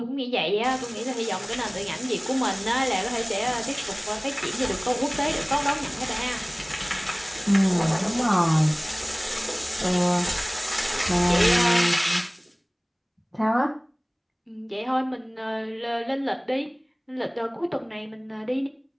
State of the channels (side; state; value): both; identical; correlation 1.00